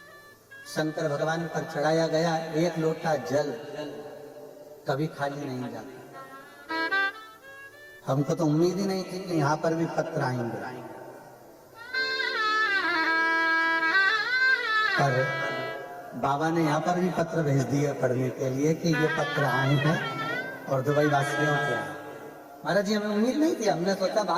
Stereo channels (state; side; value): identical; both; correlation 1.00